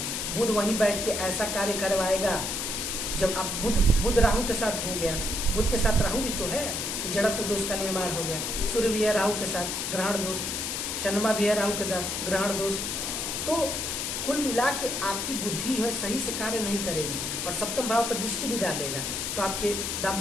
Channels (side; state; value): left; noise; hiss, 2 dB below the sound